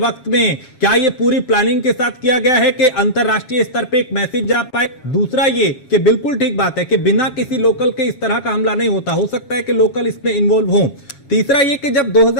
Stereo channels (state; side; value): late; right; 7.2 ms